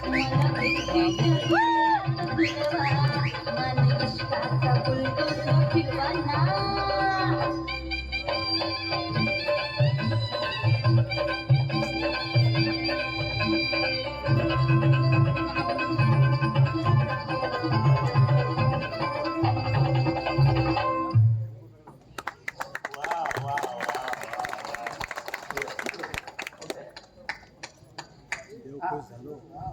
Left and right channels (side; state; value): both; identical; correlation 1.00